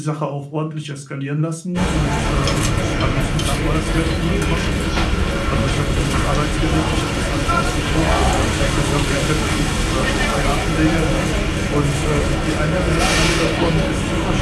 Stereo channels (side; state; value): both; identical; correlation 1.00